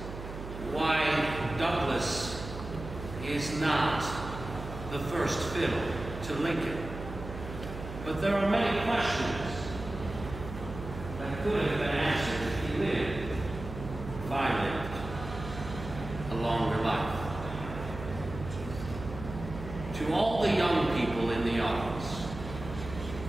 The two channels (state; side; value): noise; right; hum, 9 dB below the sound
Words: why Douglas is not the first fiddle to Lincoln, but there are many questions that could have been answered if he lived, if I lived, a longer life. To all the young people in the audience,